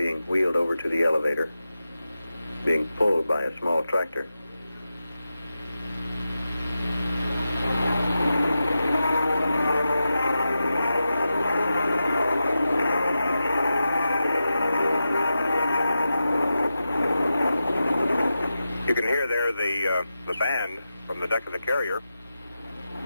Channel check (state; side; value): inverted; both; correlation -0.91